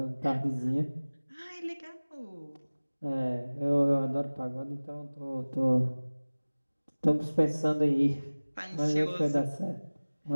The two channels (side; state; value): both; inverted; correlation -1.00